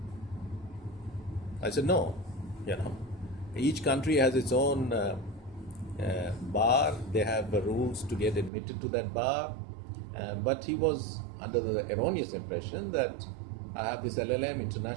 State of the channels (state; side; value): drops out; left; at 8.5 s